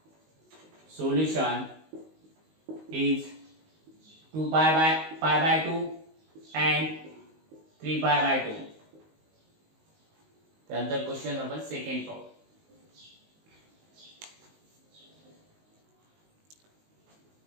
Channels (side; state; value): left; late; 19 ms